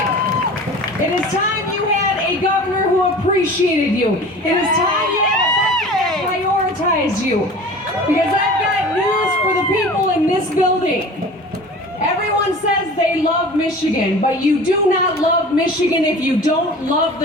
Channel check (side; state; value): both; normal; correlation 0.39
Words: It is time you had a governor who appreciated you. It is time you had a budget that prioritized you. Because I've got news for the people in this building. Everyone says they love Michigan, but you do not love Michigan if you don't love